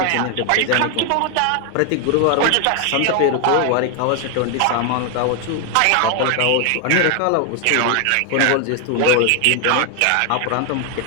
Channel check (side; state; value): both; different; correlation 0.01